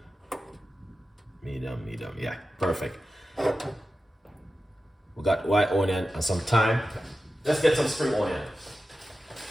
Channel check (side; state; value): both; normal; correlation 0.93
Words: medium, yeah, perfect. We got white onion and some thyme. Let's get some spring onion.